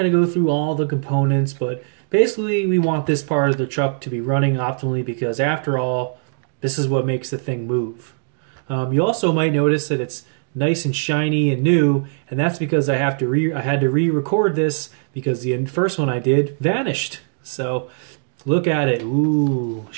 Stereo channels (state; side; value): silent; left; digital silence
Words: to go through all the components, but basically we want this part of the truck to be running optimally because after all, this is what makes the thing move. You also might notice that it's nice and shiny and new, and that's because I had to re-record this because the first one I did vanished. So look at it. Ooh,